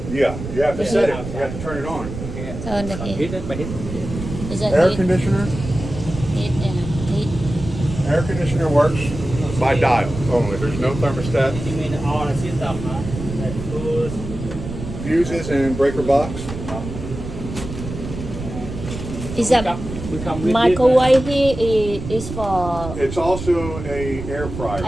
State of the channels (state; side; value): noise; right; rumble, 8 dB below the sound